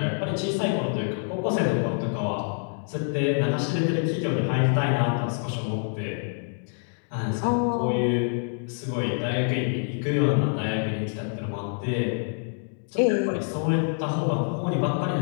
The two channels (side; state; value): right; silent; 61 dB below the other